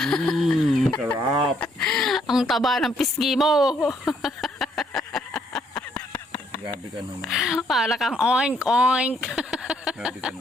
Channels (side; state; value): both; normal; correlation 0.69